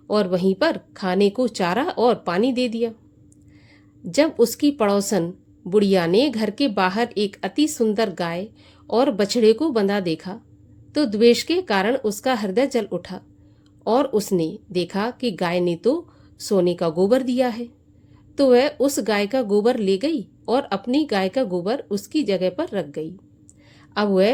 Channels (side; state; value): both; identical; correlation 1.00